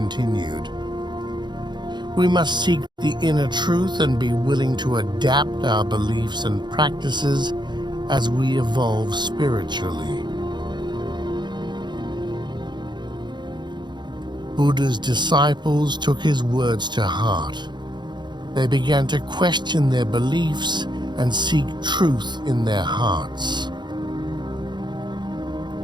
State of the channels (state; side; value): late; left; 0.21 ms